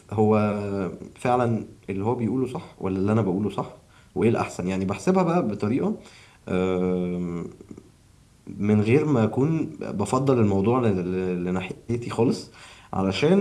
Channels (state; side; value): identical; both; correlation 1.00